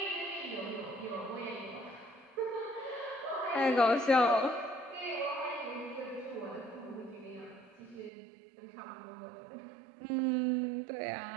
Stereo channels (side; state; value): left; drops out; at 8.1 s